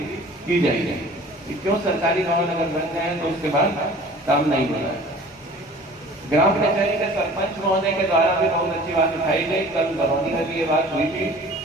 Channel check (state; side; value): normal; both; correlation 0.46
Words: की जाएगी। क्यों सरकारी भवन अगर बन जाए तो उसके बाद काम नहीं हो रहा है। ग्राम कचहरी के सरपंच महोदय के द्वारा भी बहुत अच्छी बात उठाई गई, कल बरौनी में भी ये बात हुई थी